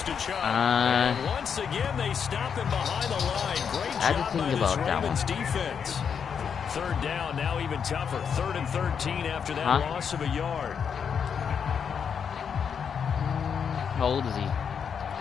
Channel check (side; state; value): right; quieter; 7.0 dB